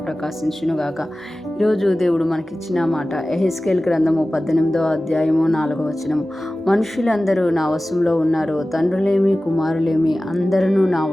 ప్రకాశించునుగాక. ఈరోజు దేవుడు మనకిచ్చిన మాట యెహెజ్కేలు గ్రంథము 18వ అధ్యాయము 4వ వచనము. మనుషులందరూ నా వశంలో ఉన్నారు, తండ్రులేమి కుమారులేమి అందరూ నా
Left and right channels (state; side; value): normal; both; correlation 0.96